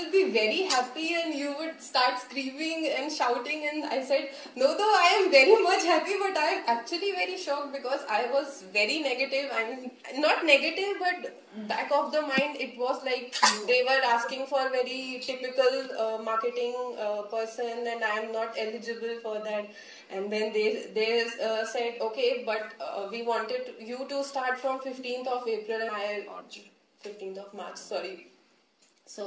be very happy and you would start screaming and shouting. And I said, no, though I am very much happy, but I am actually very shocked, because I was very negative. I mean, not negative, but back of the mind, it was like they were asking for very typical marketing person, and I am not eligible for that. And then they said, okay, but we wanted you to start from 15th of April, and 15th of March, sorry.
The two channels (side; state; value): both; identical; correlation 1.00